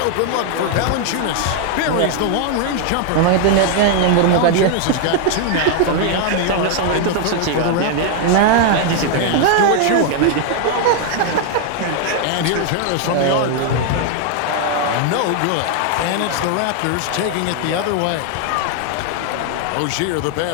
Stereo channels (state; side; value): different; both; correlation 0.00